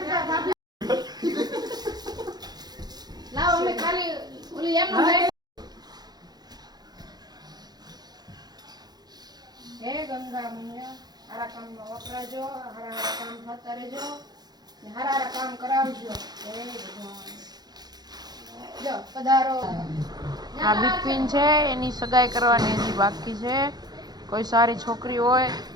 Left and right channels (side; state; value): left; late; 0.19 ms